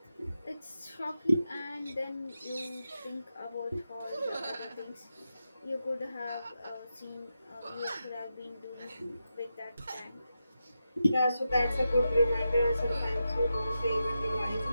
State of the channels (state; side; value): inverted; both; correlation -0.89